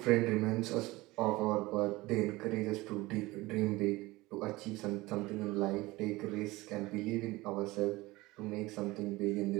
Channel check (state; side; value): quieter; left; 20.4 dB